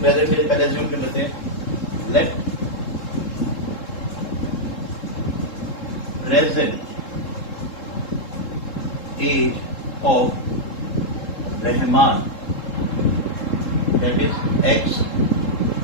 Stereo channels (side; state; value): right; late; 3.7 ms